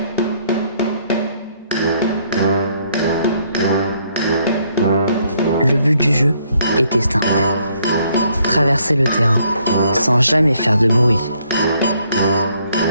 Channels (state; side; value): inverted; both; correlation -0.69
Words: Le but du jeu était simple. Traverser le terrain sans jamais faire de bruit.